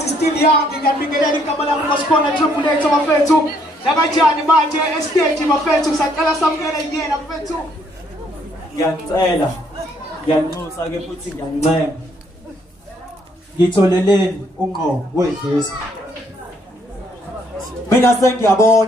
is still young, ngiyabingelela igama lami ngasikhona Triple H bafethu lakanjani manje estage bafethu saqala samukela yena bafethu ngiyacela ngiyanxusa ke futhi ngiyancema ngitholeleni ungqo wedlisa mina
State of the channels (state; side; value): normal; both; correlation 0.68